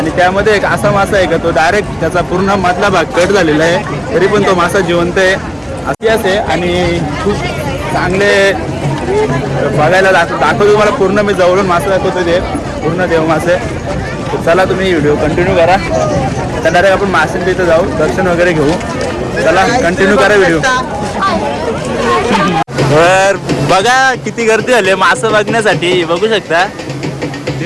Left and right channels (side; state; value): both; identical; correlation 1.00